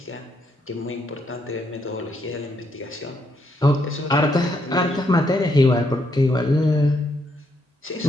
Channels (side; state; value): both; normal; correlation 0.76